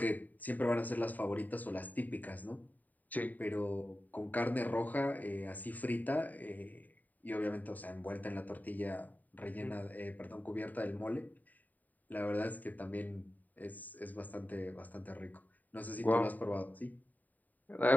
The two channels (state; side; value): late; right; 0.083 ms